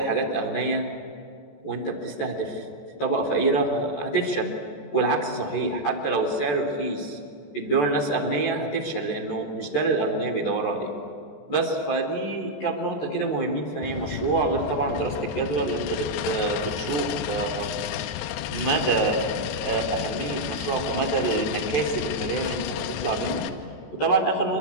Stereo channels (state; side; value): late; right; 14 ms